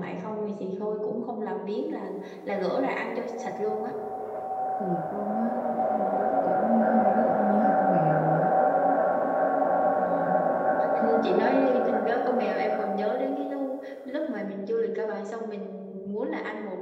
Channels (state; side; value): identical; both; correlation 1.00